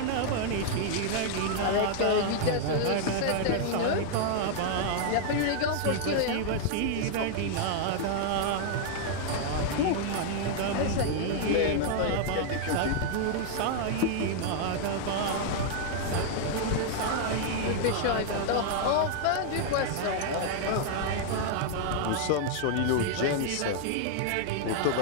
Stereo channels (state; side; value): different; both; correlation -0.01